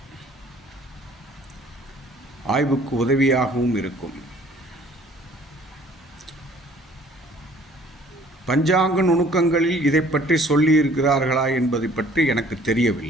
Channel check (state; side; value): normal; both; correlation 0.55